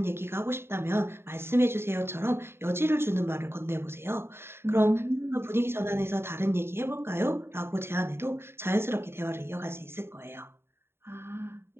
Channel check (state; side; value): late; left; 0.11 ms